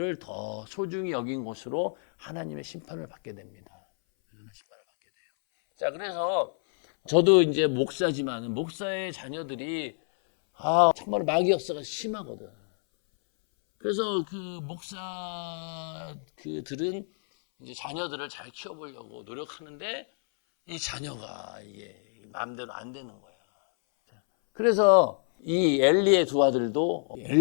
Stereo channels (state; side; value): silent; right; 59 dB below the other